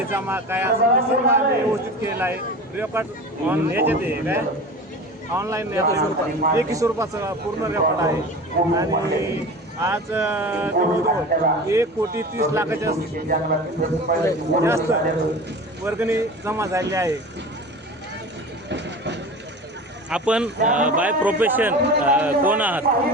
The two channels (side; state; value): both; normal; correlation 0.34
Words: जमा काय असं ते सर्व आम्ही व्यवस्थित केलेलं आहे. रेकॉर्ड ह्याच्यात आहे काय ऑनलाईन लेखी स्वरूपाचं पूर्ण रेकॉर्ड आहे आणि आज जवळजवळ 1,30,00,000 जास्त वर्गणी जमा झालेली आहे. आपण बाय प्रोफेशन कोण आहात?